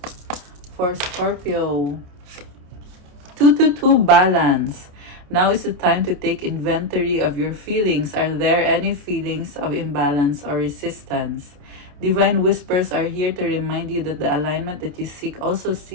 for Scorpio? 222 balance. Now is the time to take inventory of your feelings. Are there any feelings of imbalance or resistance? Divine whispers are here to remind you that the alignment that you seek also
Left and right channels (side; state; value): left; late; 28 ms